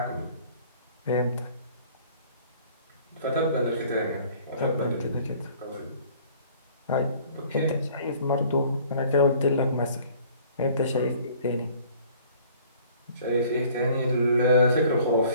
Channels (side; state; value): both; inverted; correlation -0.54